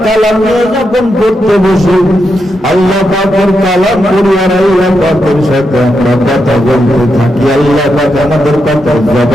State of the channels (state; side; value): normal; both; correlation 0.84